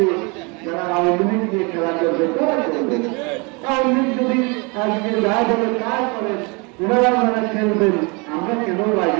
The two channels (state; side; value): quieter; left; 30.0 dB